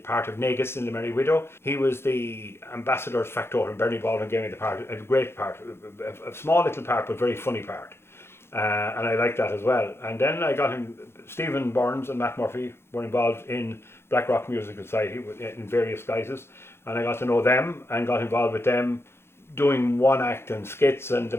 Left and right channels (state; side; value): late; right; 0.12 ms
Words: of Negus in the Merry Widow. He was the ambassador's factotum. Bernie Baldwin gave me the part, a great part, a small little part but very funny part, and I liked that as well. And then I got him. Stephen Burns and Matt Murphy were involved in Black Rock Musical Society in various guises, and I got to know them and got involved with them doing one act and skits and the